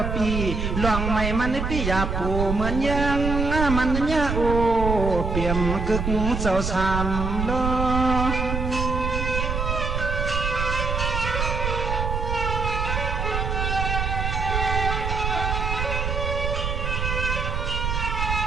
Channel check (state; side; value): noise; right; rumble, 2 dB below the sound